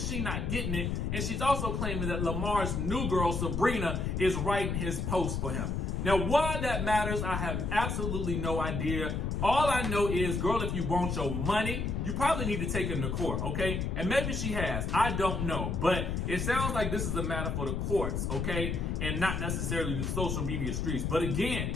not getting it. And she's also claiming that Lamar's new girl, Sabrina, is writing his post for him. Now, why that matters, I have absolutely no idea. All I know is, girl, if you want your money, you probably need to take him to court, okay? And maybe she has. I don't know. But it sounds like this is a matter for the courts, okay? And not necessarily the social media streets. But again,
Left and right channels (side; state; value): left; noise; rumble, 1 dB below the sound